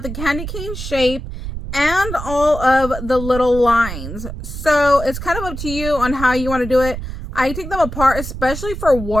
the candy cane shape and all of the little lines. So it's kind of up to you on how you want to do it. I take them apart, especially for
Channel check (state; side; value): noise; right; rumble, 8 dB below the sound